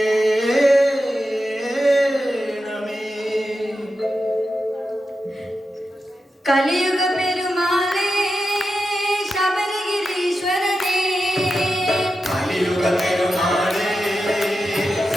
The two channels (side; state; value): both; normal; correlation 0.90